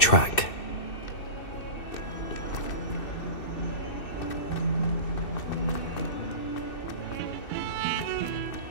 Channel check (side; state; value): right; late; 2.6 ms